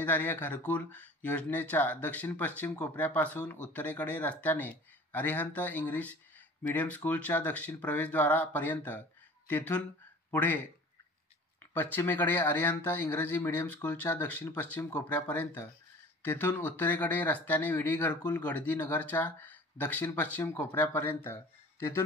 घरकुल योजनेच्या दक्षिण पश्चिम कोपऱ्यापासून उत्तरेकडे रस्त्याने अरिहंत इंग्लिश मीडियम स्कूलच्या दक्षिण प्रवेशद्वारापर्यंत, तेथून पुढे पश्चिमेकडे अरिहंत इंग्रजी मीडियम स्कूलच्या दक्षिण पश्चिम कोपऱ्यापर्यंत, तेथून उत्तरेकडे रस्त्याने विडी घरकुल गडदी नगरच्या दक्षिण पश्चिम कोपऱ्यापर्यंत,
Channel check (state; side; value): normal; both; correlation 0.44